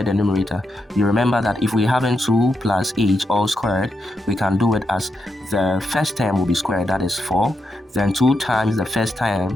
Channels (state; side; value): normal; both; correlation 0.84